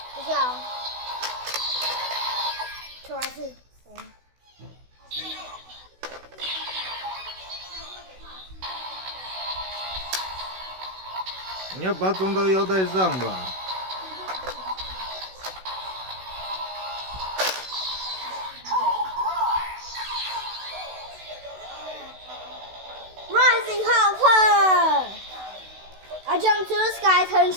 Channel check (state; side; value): late; left; 16 ms